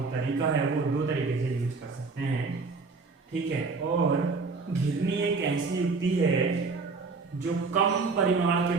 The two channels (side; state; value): left; quieter; 4.2 dB